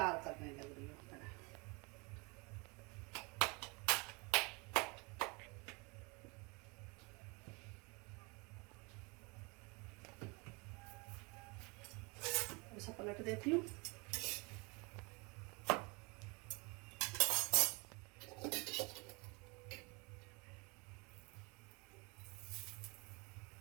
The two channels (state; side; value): quieter; left; 29.1 dB